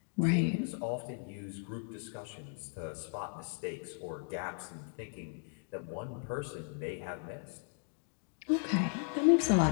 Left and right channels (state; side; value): silent; right; 54 dB below the other